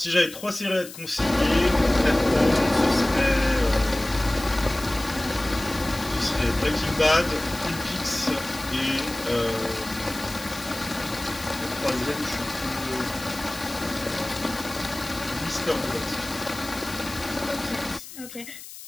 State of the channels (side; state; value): left; noise; hiss, 14 dB below the sound